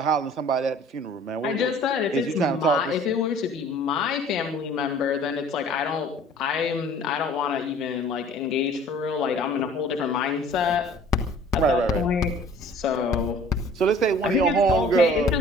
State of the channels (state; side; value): normal; both; correlation 0.50